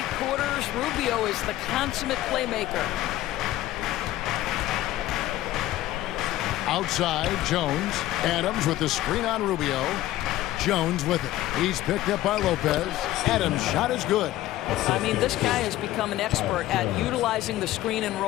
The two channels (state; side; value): quieter; right; 14.9 dB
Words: quarters. Rubio is the consummate playmaker. Outside, Jones. Adams with the screen on Rubio. Jones with it. He's picked up by Lopez. Adams' shot is good. I mean, this guy has become an expert at utilizing the screen and